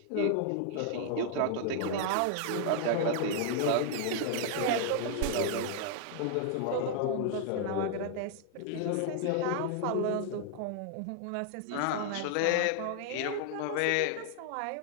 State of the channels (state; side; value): different; both; correlation 0.00